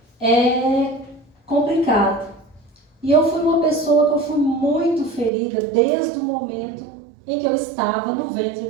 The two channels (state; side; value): drops out; left; at 5.3 s